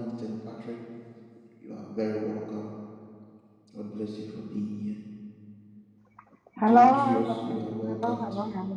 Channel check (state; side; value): identical; both; correlation 1.00